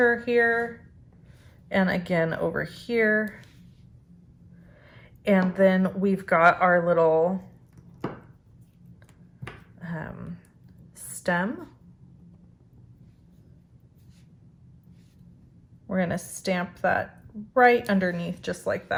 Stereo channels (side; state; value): both; identical; correlation 1.00